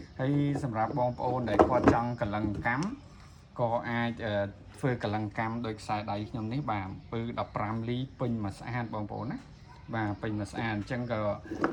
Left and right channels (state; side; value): identical; both; correlation 1.00